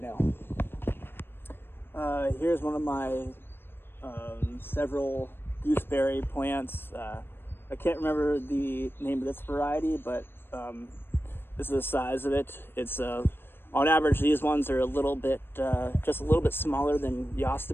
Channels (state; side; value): late; right; 0.10 ms